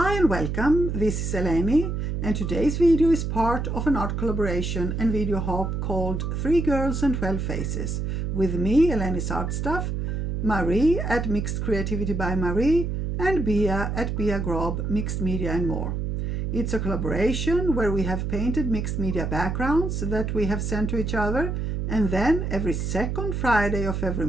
and welcome, this is Eleni, and today's video is part of an art collaboration and video hop called 3 Girls and 12 Faces, with me, elenisartstuff, Marie at Mixed Creativity by Marie, and Bia at Bia Grob, Mixed Media and More. It's a collaboration where we have painted mixed media backgrounds that we have sent to each other, and then every second Friday of every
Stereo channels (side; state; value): right; noise; hum, 2 dB below the sound